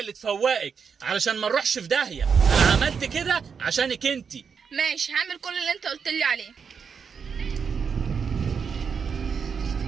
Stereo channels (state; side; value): quieter; left; 6.3 dB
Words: اللي تفوقك علشان ما نروحش في داهيه. انا عملت كده عشانك انتي. ماشي هعمل كل اللي انت قلت لي عليه.